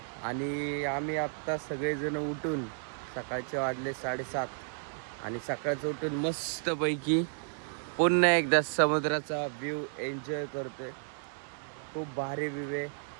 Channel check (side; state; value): left; silent; digital silence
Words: आणि आम्ही आत्ता सगळेजण उठून सकाळचे वाजले 7:30 आणि सकाळचं उठून मस्तपैकी पुन्हा एकदा समुद्राचा व्ह्यू एन्जॉय करतोय. खूप भारी व्ह्यू आहे,